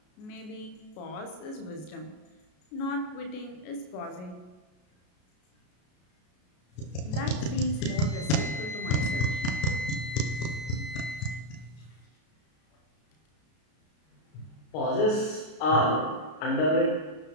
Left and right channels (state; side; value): late; right; 33 ms